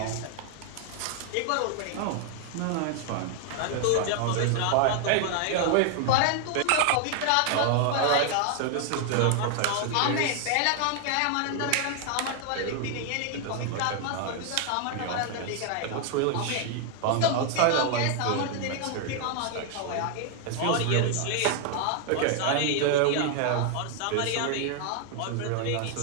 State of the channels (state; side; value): different; both; correlation 0.00